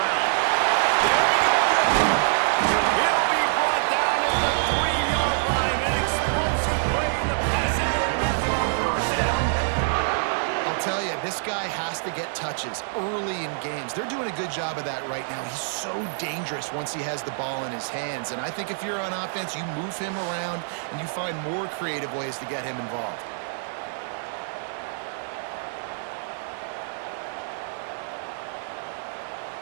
There he goes. He'll be brought down at the 3-yard line. An explosive play in the passing game. That's on the doorstep. I'll tell you, this guy has to get touches early in games. They're doing a good job of that right now. He's so dangerous once he has the ball in his hands. And I think if you're on offense, you move him around and you find more creative ways to get him involved.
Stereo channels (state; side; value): silent; left; digital silence